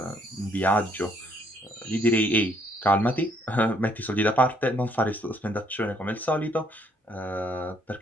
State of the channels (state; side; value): normal; both; correlation 0.67